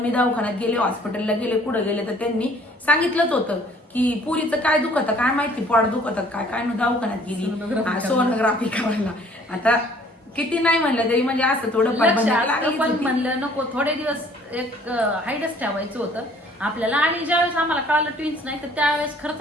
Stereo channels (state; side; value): normal; both; correlation 0.57